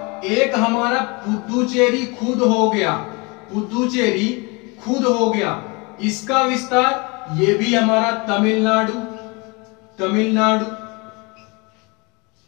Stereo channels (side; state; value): right; quieter; 28.5 dB